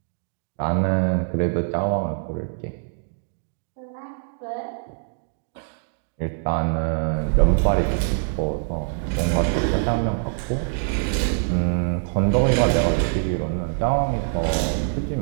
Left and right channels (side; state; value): left; silent; 63 dB below the other